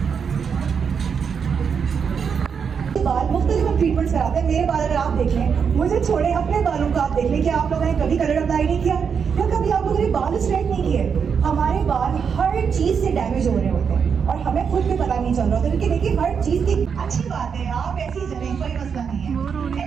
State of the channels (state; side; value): quieter; left; 6.6 dB